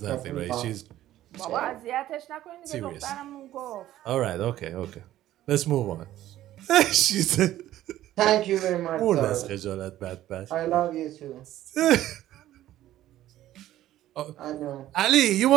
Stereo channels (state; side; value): quieter; left; 13.7 dB